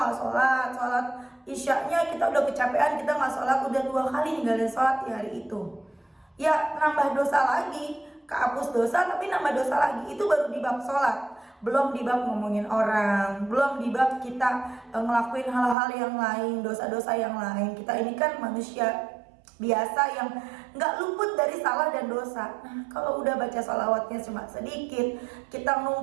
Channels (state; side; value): drops out; left; at 15.8 s